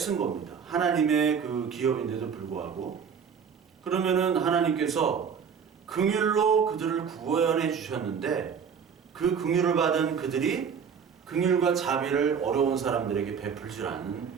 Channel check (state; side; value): quieter; left; 6.8 dB